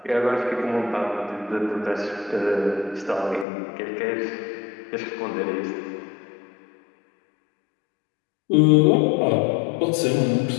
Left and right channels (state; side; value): drops out; right; at 3.5 s